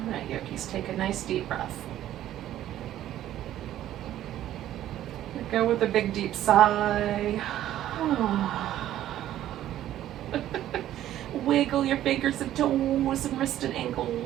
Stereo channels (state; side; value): quieter; left; 12.7 dB